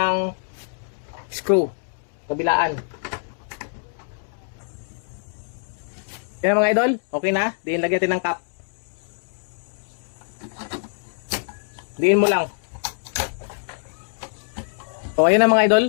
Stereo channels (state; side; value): silent; right; digital silence